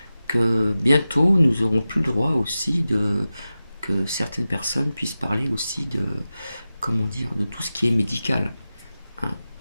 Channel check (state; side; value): inverted; both; correlation -0.94